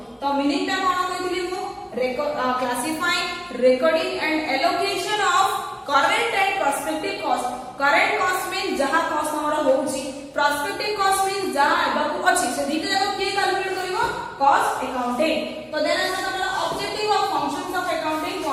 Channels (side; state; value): both; identical; correlation 1.00